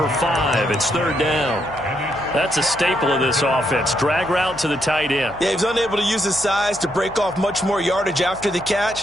5. It's 3rd down. That's a staple of this offense. Drag route to the tight end. Yeah, he's unable to use his size to break off much more yardage after the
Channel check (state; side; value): noise; left; hum, 19 dB below the sound